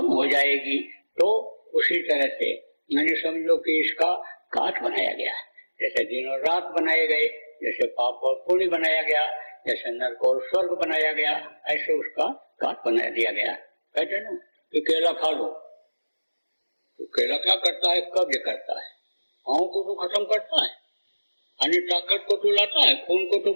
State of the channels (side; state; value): both; inverted; correlation -1.00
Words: हो जाएगी। तो उसी तरह से समझो कि इसका काट बनाया गया, जैसे दिन और रात बनाए गए, जैसे पाप और पुण्य बनाया गया, जैसे नरक और स्वर्ग बनाया गया, ऐसे उसका काट बना दिया गया। कहते ना कि केला खा लो, तो केला क्या करता है? कब्ज करता है, आँखों को तो खत्म करता है, ताकत को तो लाता है, खून को तो